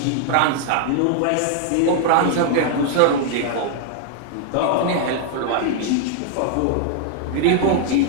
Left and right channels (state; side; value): different; both; correlation 0.00